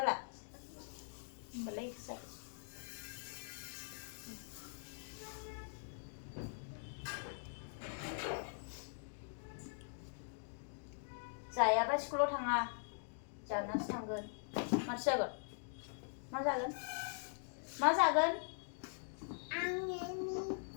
होमबालाय जाबाय जायाबा स्कुलाव थाङा जानासो थांगोन माथो जागोन मा जागोन मा जागोन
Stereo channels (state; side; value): silent; right; digital silence